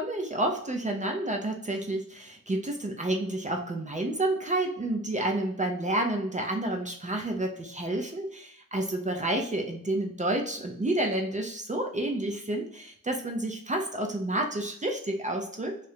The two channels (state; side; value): normal; both; correlation 0.42